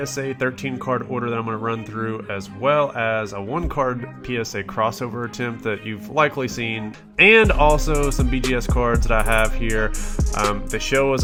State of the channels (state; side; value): identical; both; correlation 1.00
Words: 13 card order that I'm going to run through, as well as a 1 card PSA crossover attempt that you've likely seen, and also some BGS cards that I have here. The show was